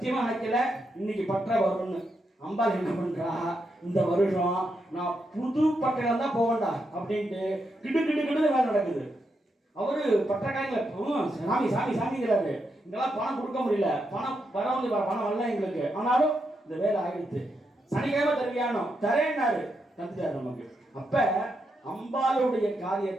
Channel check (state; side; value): normal; both; correlation 0.83